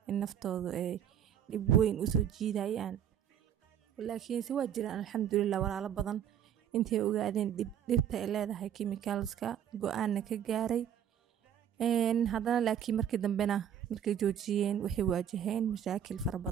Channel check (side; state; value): left; quieter; 9.4 dB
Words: in naftoodu ay dhib weyn usoo jiidayaan, laakiinse waa jiraan alxamdulillah walaalo badan intay ogaadeen dhibta ay leedahay chemicalska go-aanna ka gaaray. haddana laakiin markii dambena markay joojiyeen waxay waajaheen mashaakil fara